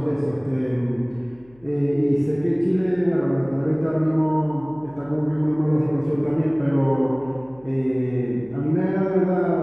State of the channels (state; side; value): noise; left; hum, 28 dB below the sound